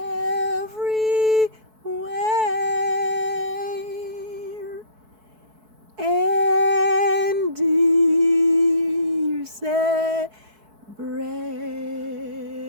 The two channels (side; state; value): left; late; 4.6 ms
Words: and here's a brand